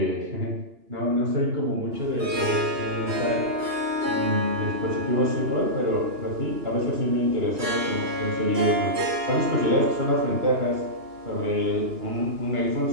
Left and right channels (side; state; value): left; late; 2.9 ms